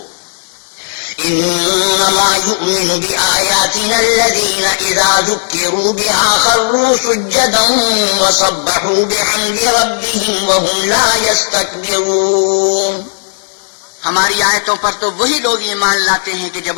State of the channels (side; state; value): right; silent; digital silence